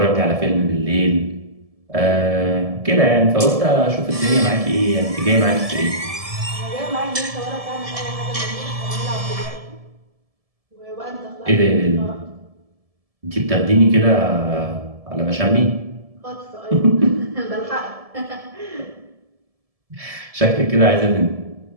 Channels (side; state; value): left; late; 1.7 ms